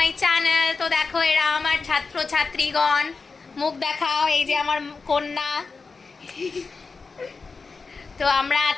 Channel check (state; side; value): quieter; right; 4.5 dB